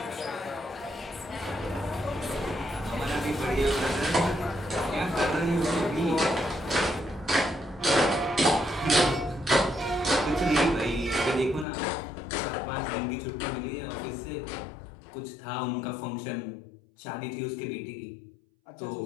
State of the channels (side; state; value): right; drops out; at 11.7 s